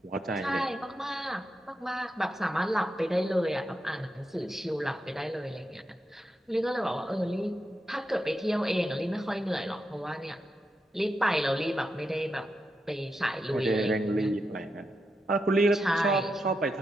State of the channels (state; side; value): normal; both; correlation 0.86